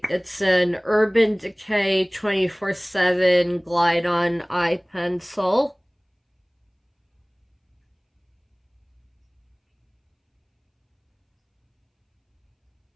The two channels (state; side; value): identical; both; correlation 1.00